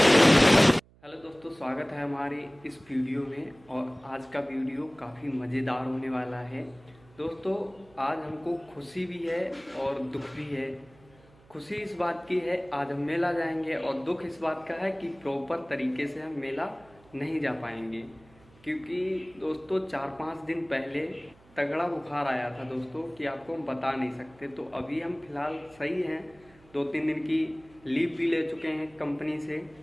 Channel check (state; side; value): noise; right; hum, 27 dB below the sound